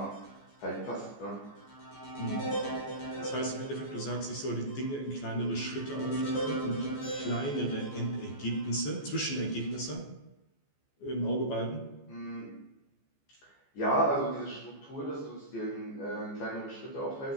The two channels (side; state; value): right; late; 14 ms